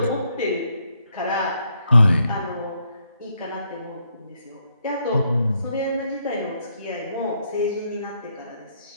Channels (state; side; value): inverted; both; correlation -0.75